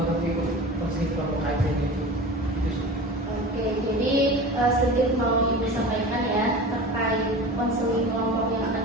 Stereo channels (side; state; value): both; normal; correlation 0.34